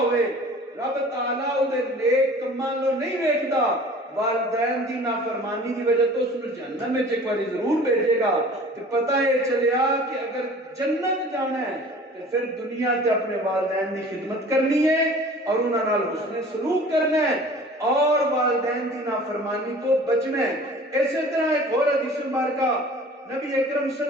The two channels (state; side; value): normal; both; correlation 0.45